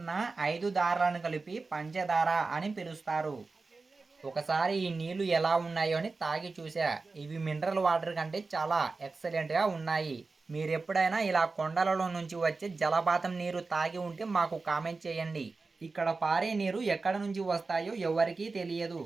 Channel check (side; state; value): left; quieter; 3.9 dB